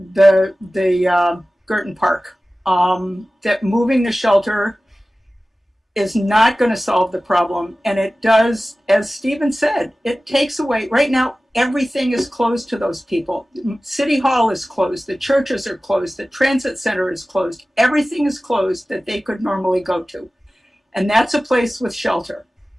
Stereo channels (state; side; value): normal; both; correlation 0.96